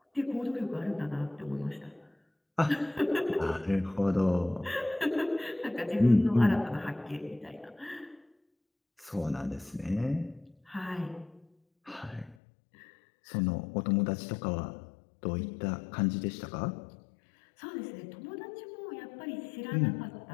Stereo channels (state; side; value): drops out; right; at 12.4 s